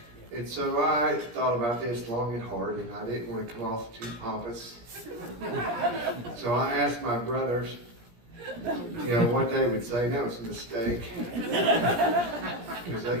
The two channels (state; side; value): late; left; 17 ms